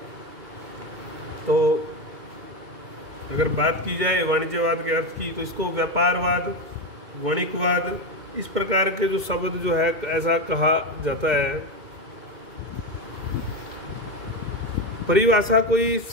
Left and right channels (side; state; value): left; late; 2.1 ms